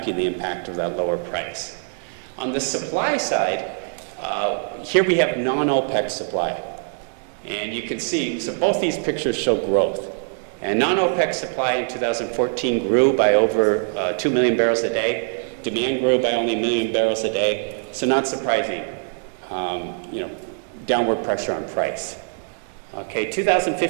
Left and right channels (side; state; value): left; silent; 60 dB below the other